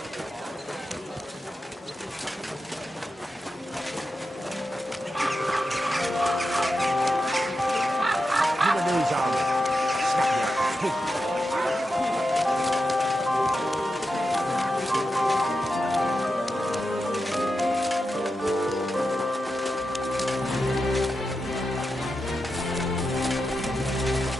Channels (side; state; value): both; normal; correlation 0.89